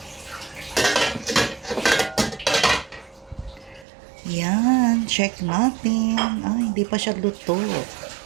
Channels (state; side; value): drops out; left; at 3.9 s